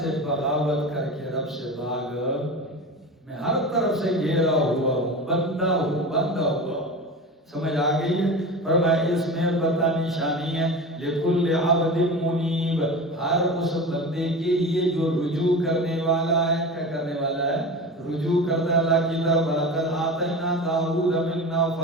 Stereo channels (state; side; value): normal; both; correlation 0.30